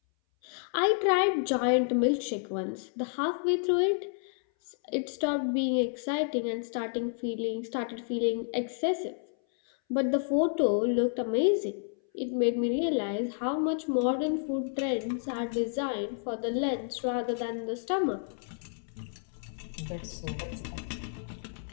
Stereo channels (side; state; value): right; silent; 58 dB below the other